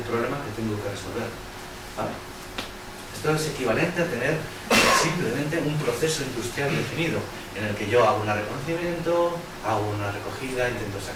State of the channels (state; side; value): identical; both; correlation 1.00